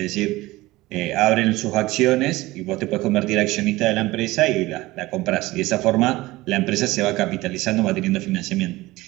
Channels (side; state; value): left; quieter; 19.2 dB